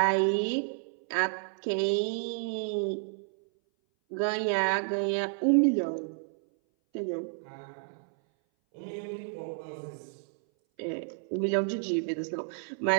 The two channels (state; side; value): silent; left; 57 dB below the other